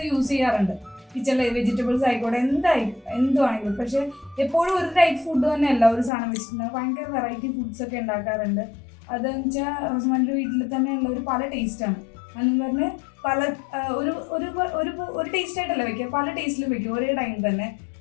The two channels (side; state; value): right; drops out; at 6.1 s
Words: യൂസ് ചെയ്യാറുണ്ട്. കിച്ചണിലെ വെജിറ്റബിൾസ് ആയിക്കോട്ടെ, എന്തുവാണെങ്കിലും. പക്ഷെ എപ്പോഴും ഒരു ടൈപ്പ് ഫുഡ് തന്നെയല്ല ഒരു സാധനം വെച്ചിട്ടുണ്ടെങ്കിൽ ഭയങ്കര വെറൈറ്റി ഫുഡ്സ് ഒക്കെ ഉണ്ടാക്കാറുണ്ട്. അതെന്ന് വെച്ചാൽ റോസമാൻ്റെ വീട്ടിൽ തന്നെ ഉള്ള ഒരു പല ടേസ്റ്റാണ്. അതെന്ന് പറഞ്ഞ് പല ഒരു ടേസ്റ്റ് ആയിട്ടല്ല വെക്കുക, പല ടേസ്റ്റിലും വെക്കും ഒരേ ടൈം തന്നെ.